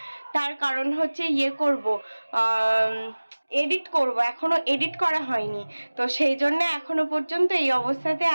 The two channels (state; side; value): inverted; both; correlation -1.00